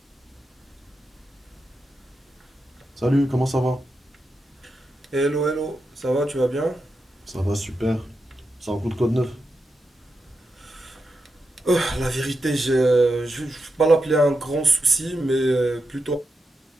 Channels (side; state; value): both; normal; correlation 0.87